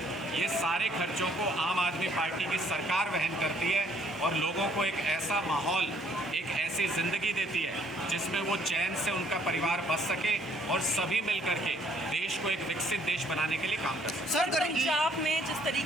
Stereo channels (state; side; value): normal; both; correlation 0.64